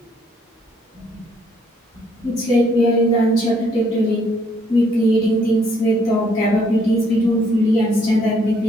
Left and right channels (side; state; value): both; normal; correlation 0.67